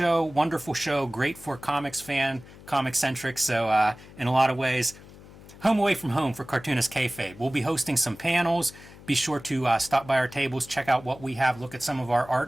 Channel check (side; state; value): left; noise; hum, 19 dB below the sound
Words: wonderful show, great for comics fan, comic-centric, so in a lot of ways, home away from home for Cartoonist Kayfabe. We'll be hosting some panels. Be sure to stop by our tables, check out what we have, look at some of our